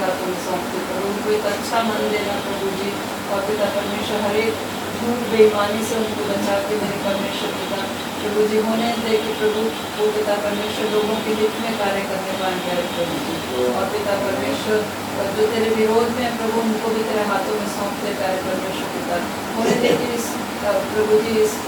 हाथों में सौंपते प्रभु, उनको एक अच्छा मन देना प्रभु जी, और पिता परमेश्वर हर एक झूठ बेईमानी से उनको बचा के मेरे परमेश्वर पिता प्रभु जी होने दे कि प्रभु वो पिता परमेश्वर लोगों के हित में कार्य करने पाए प्यारे प्रभु जी, और पिता परमेश्वर जो तेरे विरोध में प्रभु उनको भी तेरे हाथों में सौंपते प्यारे परमेश्वर पिता होने दे कि इस प्रभु जी इस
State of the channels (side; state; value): both; identical; correlation 1.00